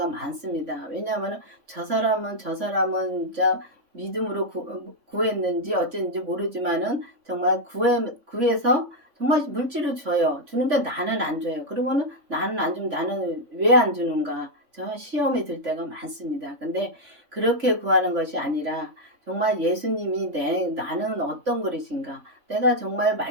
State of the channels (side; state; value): left; late; 3.5 ms